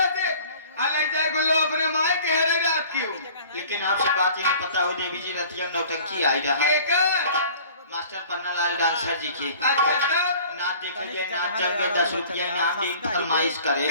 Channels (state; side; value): inverted; both; correlation -0.48